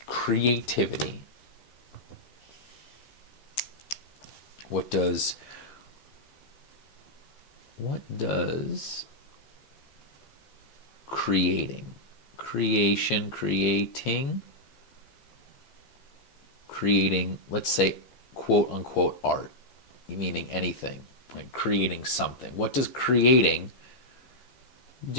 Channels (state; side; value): late; right; 15 ms